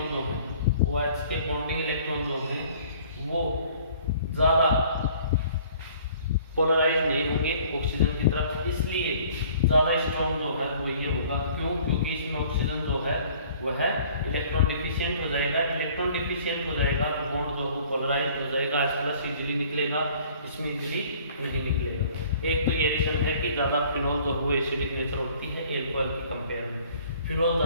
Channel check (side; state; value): both; inverted; correlation -0.54